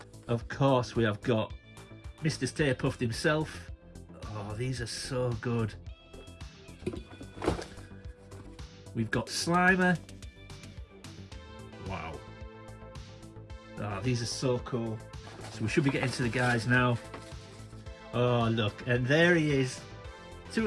Of course, we have got Mr. Stay Puft himself. Oh, these are so good. We've got Slimer. Wow. Oh, these are so cool. So we should be getting to the guys now. Oh, look, and there he is.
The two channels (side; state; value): both; identical; correlation 1.00